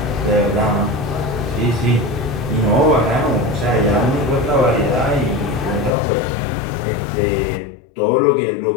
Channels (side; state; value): right; drops out; at 5.9 s